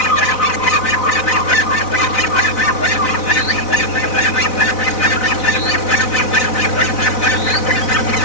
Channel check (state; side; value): late; right; 4.0 ms